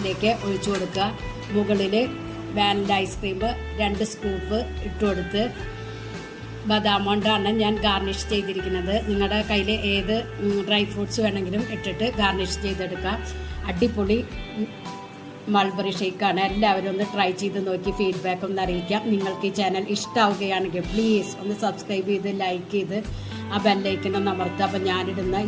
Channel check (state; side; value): identical; both; correlation 1.00